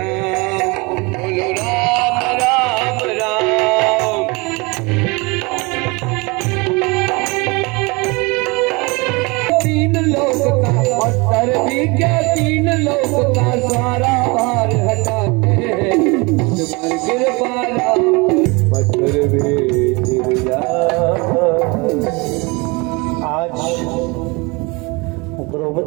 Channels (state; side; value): quieter; left; 27.0 dB